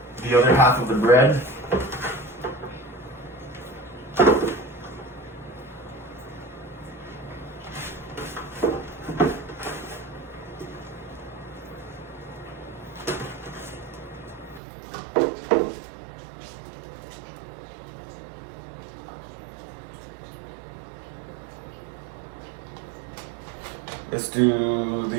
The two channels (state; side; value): drops out; left; at 14.6 s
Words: The other half of the bread. Let's do